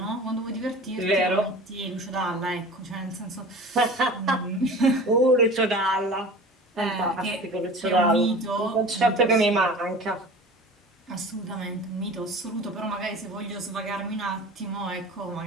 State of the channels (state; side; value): normal; both; correlation 0.39